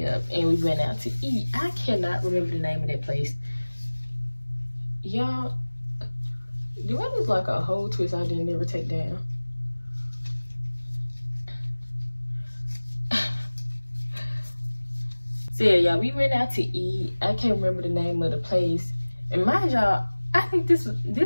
up, and we went out to eat. I cannot remember the name of that place. Y'all, do I look like a whole twist I didn't ever take down? So yeah, y'all, we went out to eat. I can't remember the name of the place. And mind y'all, I think this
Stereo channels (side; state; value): both; inverted; correlation -1.00